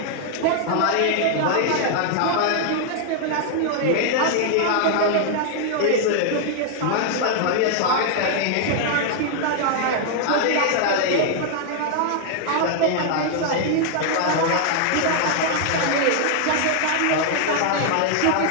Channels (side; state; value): both; different; correlation 0.00